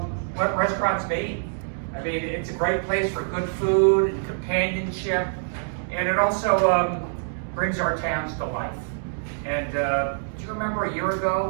what restaurants mean. I mean, it's a great place for good food and companionship, and it also brings our towns to life. And do you remember a year ago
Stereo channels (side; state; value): left; silent; digital silence